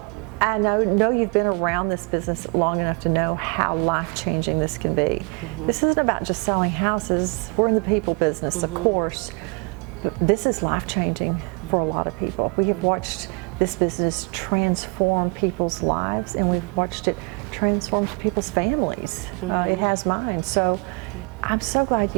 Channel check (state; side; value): quieter; left; 30.1 dB